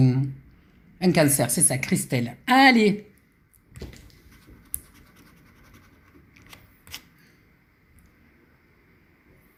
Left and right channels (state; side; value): identical; both; correlation 1.00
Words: un cancer? C'est ça, Christelle. Allez,